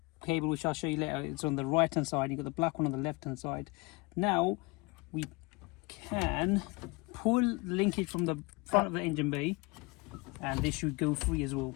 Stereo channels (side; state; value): right; quieter; 26.2 dB